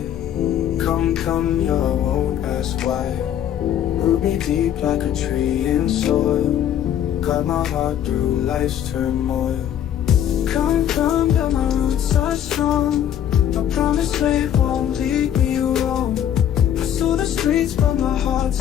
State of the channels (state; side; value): quieter; right; 10.2 dB